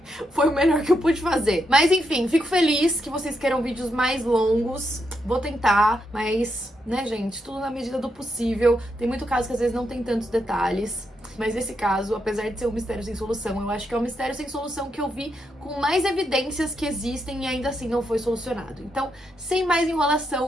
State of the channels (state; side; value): normal; both; correlation 0.81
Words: foi o melhor que eu pude fazer. Mas enfim, fico feliz que vocês queiram vídeos mais longos. Vou tentar, mas, né, gente, tudo na medida do possível. Tem muito caso que às vezes não tem tantos detalhes. Mas esse caso, apesar de ser um mistério sem solução, eu acho que é um mistério sem solução que eu vi com mais evidências que existem e ainda assim não foi solucionado. Então, sem mais